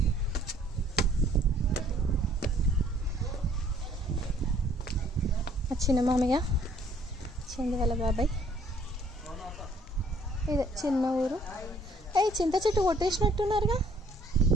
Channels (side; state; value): both; normal; correlation 0.61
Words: ఆ చిన్న మామయ్య చందు వాళ్ళ బాబాయ్. ఇదే చిన్న ఊరు. చింత చెట్టు కొట్టేసినట్టున్నారుగా.